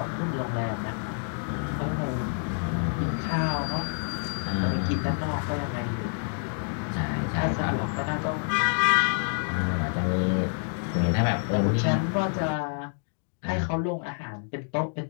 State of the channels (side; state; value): right; silent; 60 dB below the other